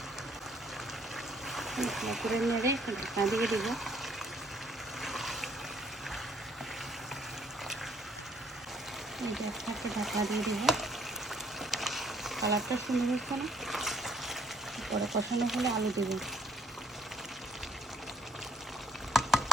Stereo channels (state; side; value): normal; both; correlation 0.65